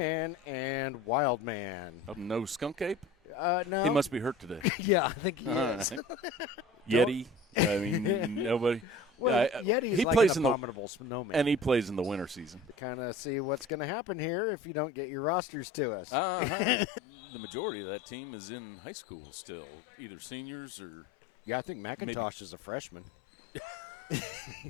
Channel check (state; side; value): drops out; right; at 13.7 s